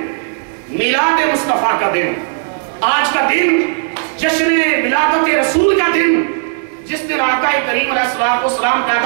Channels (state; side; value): silent; left; 70 dB below the other